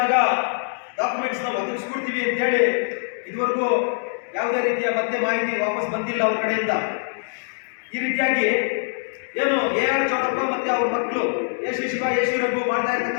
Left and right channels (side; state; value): right; silent; digital silence